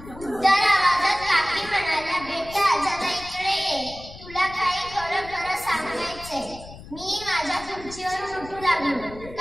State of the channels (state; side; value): noise; left; rumble, 16 dB below the sound